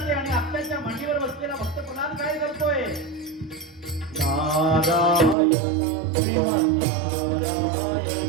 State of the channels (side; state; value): left; drops out; at 5.4 s